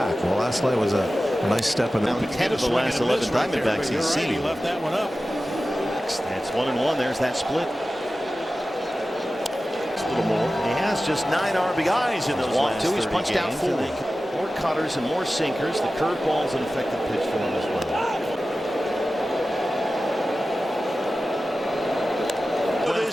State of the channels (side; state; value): both; normal; correlation 0.95